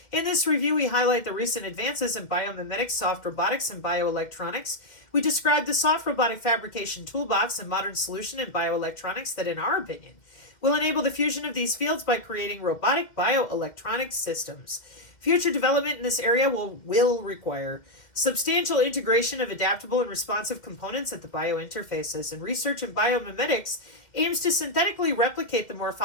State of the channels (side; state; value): right; late; 2.1 ms